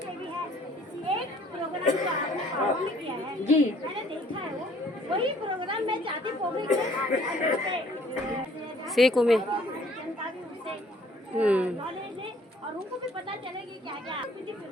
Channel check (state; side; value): normal; both; correlation 0.58